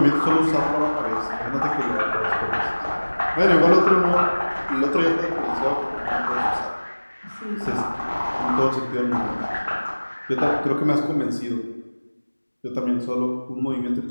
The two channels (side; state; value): both; inverted; correlation -1.00